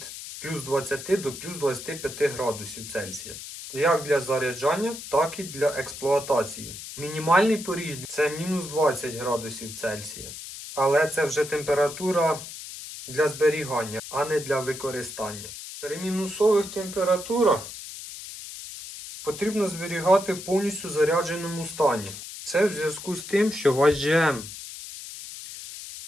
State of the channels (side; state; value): left; noise; hiss, 11 dB below the sound